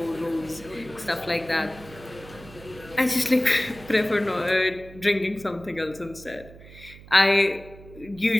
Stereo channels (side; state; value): right; noise; hum, 19 dB below the sound